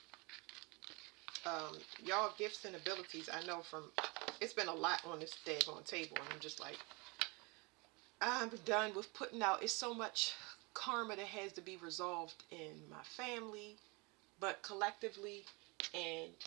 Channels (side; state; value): left; quieter; 28.1 dB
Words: Y'all gifts and abilities, I know from, it's been a lot on this daggone table, and I'm just like, I'm done with putting out. It's so much karma that has to be resolved in my family, but collectively, and